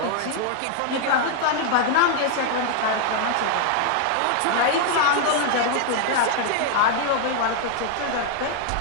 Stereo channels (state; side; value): different; both; correlation 0.00